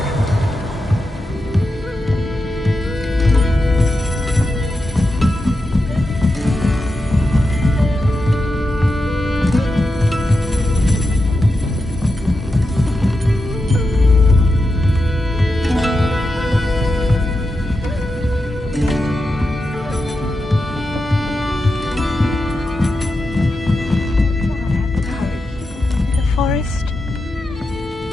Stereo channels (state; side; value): normal; both; correlation 0.89